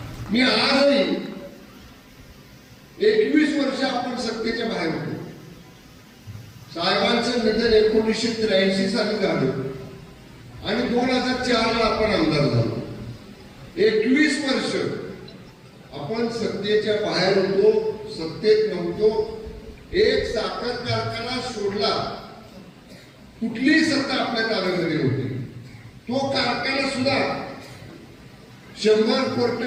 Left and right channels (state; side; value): identical; both; correlation 1.00